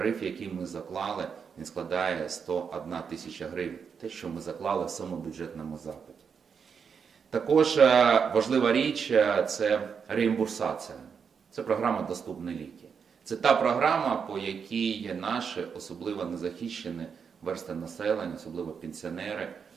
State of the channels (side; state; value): left; quieter; 6.5 dB